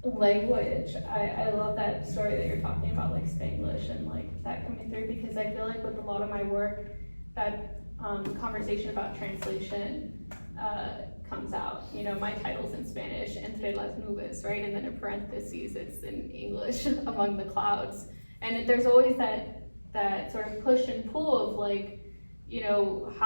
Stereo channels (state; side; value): inverted; both; correlation -1.00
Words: language, I love that story that you're talking about, like Spanglish and like that coming through, because I feel like with a lot of my work, that conversation about translation comes out. You know, my title's in Spanish, entre las nubes, right? And then in parentheses, it's in English, among the clouds. And there's always that sort of push and pull of like, you know,